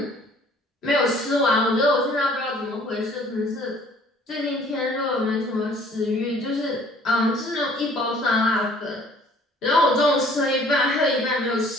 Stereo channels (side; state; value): both; normal; correlation 0.55